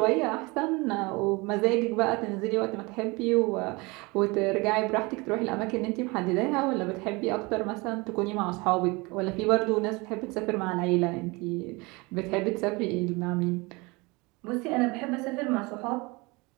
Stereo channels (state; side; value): quieter; left; 25.5 dB